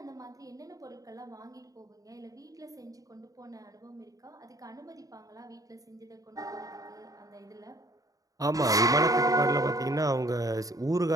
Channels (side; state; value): left; late; 0.17 ms